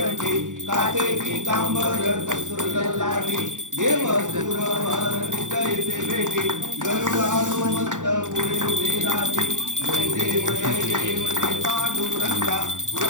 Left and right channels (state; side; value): late; left; 0.87 ms